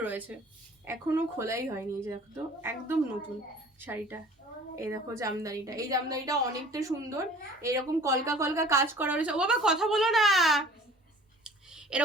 রয়েছে, এখনো খোলাই হয়নি। এই যে দেখো, তো একদম নতুন শাড়িটা। এই দেখো জামদানিটা, এই জামদানিটা অনেকটা সুন্দর, এরকম কলকা কলকা কাজ করা রয়েছে। ও বাবা কথা বলো না,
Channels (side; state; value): both; normal; correlation 0.48